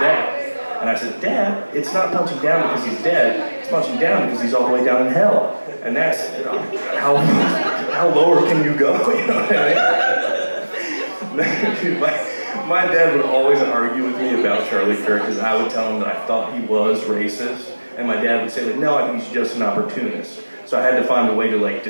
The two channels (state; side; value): inverted; both; correlation -1.00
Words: And I said, Dad, it's not punching down because he's dead, it's punching down because he's all the way down in hell. And that's, how lower can you go, you know what I mean? Dude, my dad would always argue with me about Charlie Kirk because I would tell him that I thought he was racist. And my dad would say, like, no, I think he's just an opportunist. So I had to find a way to like